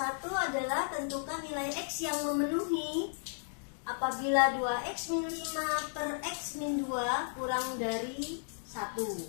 adalah tentukan nilai X yang memenuhi apabila 2X min 5 per X min 2 kurang dari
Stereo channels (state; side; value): silent; right; digital silence